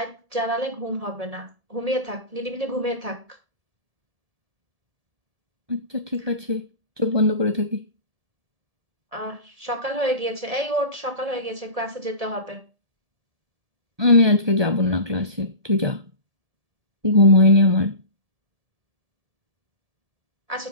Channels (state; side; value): late; left; 1.7 ms